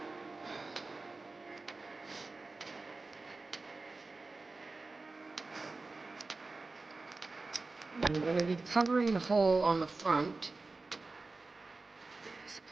I'm going to be covering the hole on the front.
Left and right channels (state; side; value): quieter; left; 3.6 dB